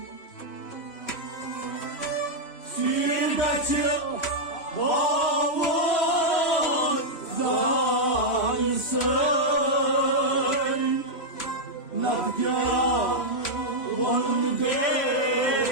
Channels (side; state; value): right; late; 3.1 ms